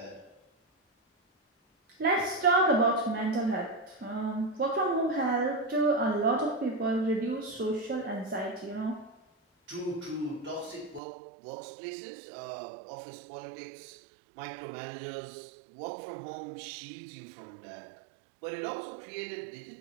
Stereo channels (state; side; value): drops out; left; at 11.0 s